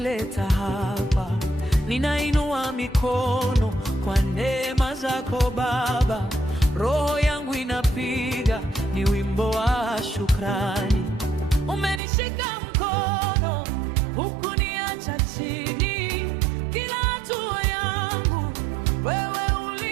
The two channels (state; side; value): drops out; left; at 12.0 s